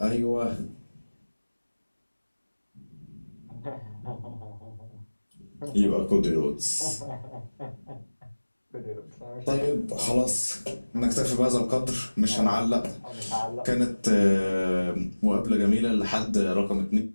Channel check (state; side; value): inverted; both; correlation -1.00